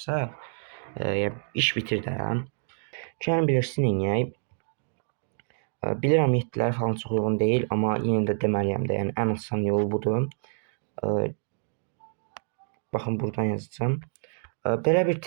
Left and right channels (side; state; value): left; silent; digital silence